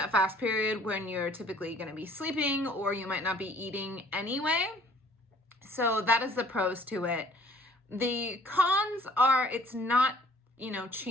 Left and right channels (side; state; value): both; normal; correlation 0.57